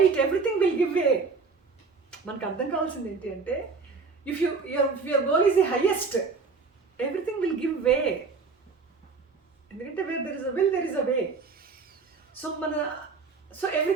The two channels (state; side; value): quieter; left; 4.6 dB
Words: everything will give way. మనకు అర్థం కావాల్సింది ఏంటి అంటే if your goal is the highest everything will give way. ఎందుకంటే where there is a will there is a way. So